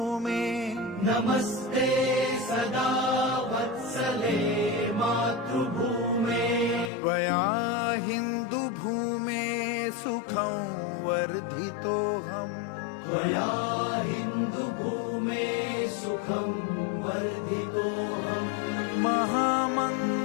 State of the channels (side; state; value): right; drops out; at 6.9 s